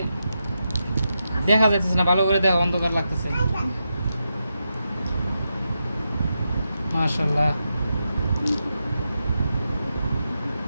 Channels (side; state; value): both; inverted; correlation -0.87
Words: দেখা যাইতেছে না ভালো করে, দেখা অন্ধকার লাগতেছে। মাশাআল্লাহ,